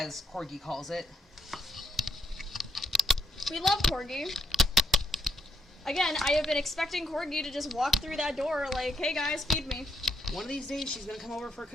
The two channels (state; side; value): normal; both; correlation 0.75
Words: Corgi calls it. We love Corgi. Again, I have been expecting Corgi to just walk through that door like, hey guys, feed me. One of these days, she's gonna come over for a